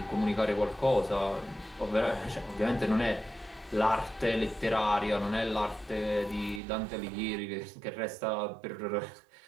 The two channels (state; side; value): drops out; left; at 6.6 s